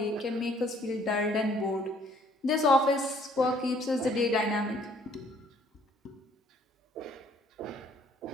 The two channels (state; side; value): normal; both; correlation 0.61